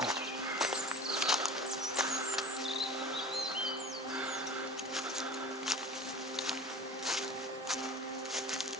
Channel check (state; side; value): normal; both; correlation 0.38